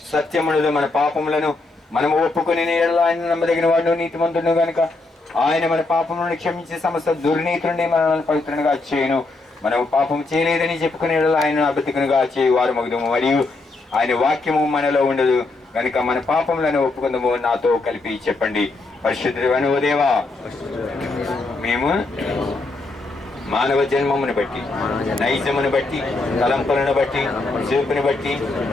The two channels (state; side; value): quieter; right; 3.4 dB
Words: సత్యముడు. మన పాపములను మనం ఒప్పుకుని ఆయన నమ్మదగిన వాడు, నీతిమంతుడు గనుక ఆయన మన పాపములను క్షమించి సమస్త దుర్నీతుడిని మనల్ని పవిత్రంగా చేయను. మనం పాపం చేయలేదని చెప్పుకునే ఆయన అబద్ధికునిగా చేయు వారు మగుదము. మరియు ఆయన వాక్యము మనలో ఉండదు కనుక మన పాపములను ఒప్పుకుందాము. నాతో కలిపి చెప్పండి. పరిశుద్ధుడైన ఓ దేవా, మేము మానవ జన్మమును బట్టి, నైజమును బట్టి, తలంపులను బట్టి, చూపుని బట్టి,